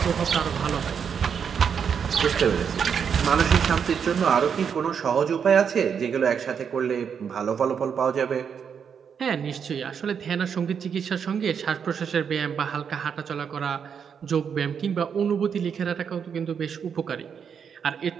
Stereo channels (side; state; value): left; quieter; 7.1 dB